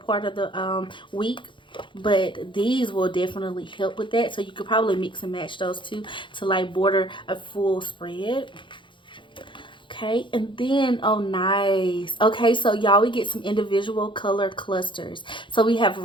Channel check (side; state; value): right; late; 0.24 ms